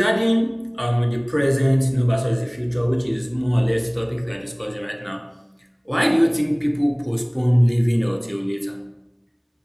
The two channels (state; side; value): identical; both; correlation 1.00